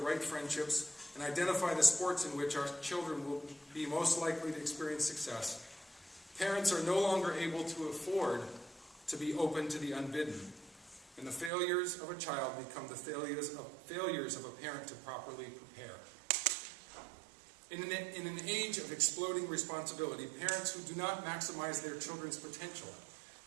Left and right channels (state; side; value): drops out; left; at 11.5 s